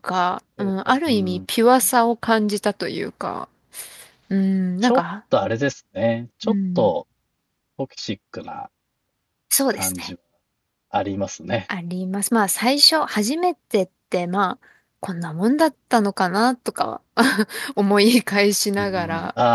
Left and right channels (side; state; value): both; identical; correlation 1.00